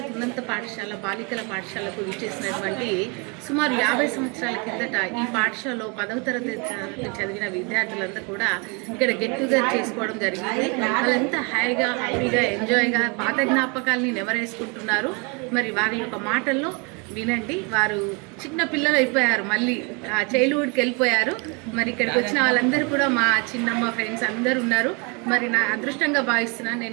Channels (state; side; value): quieter; left; 32.0 dB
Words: ఉన్నత పాఠశాల బాలికల పాఠశాలకు విచ్చేసినటువంటి సుమారు 50 సంవత్సరాల కిందట ఈ పాఠశాలలో 10వ తరగతి చదివిన విద్యార్థులంతా కూడా ఇక్కడ గెట్ టుగెదర్ చేసుకోవడం జరిగింది. వాళ్ళంతా హ్యాపీగా ఎంజాయ్గా పాత జ్ఞాపకాలని నెమరేసుకుంటున్నారు. మరి వారి యొక్క మాటల్లో వినండి. వారు చిన్న పిల్లలు అయిపోయారు, మళ్ళీ చైల్డ్హుడ్కి వెళ్ళిపోయారు. మరి ఇక్కడికి వచ్చిన వాళ్ళందరూ కూడా మా చిన్నమ్మ ఫ్రెండ్స్ అందరూ ఉన్నారు. మరి నా అదృష్టంగా భావిస్తున్నాను.